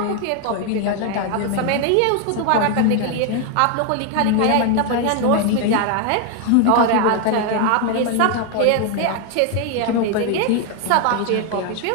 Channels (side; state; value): both; different; correlation 0.01